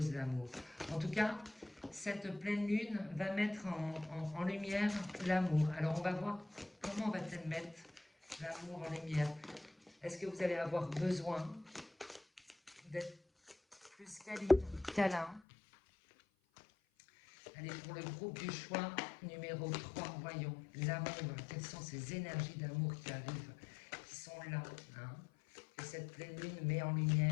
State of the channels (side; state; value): right; drops out; at 15.4 s